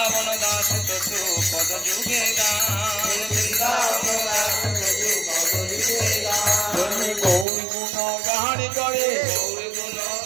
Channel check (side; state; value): left; drops out; at 7.5 s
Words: দাস ততু পদ যুগে গান, বৃন্দাবন দাস ততু পদ যুগে গান, গৌর গুণ গান করে, গৌর গুণ